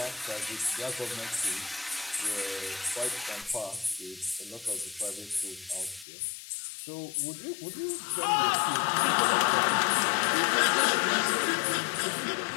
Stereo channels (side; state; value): right; drops out; at 6.1 s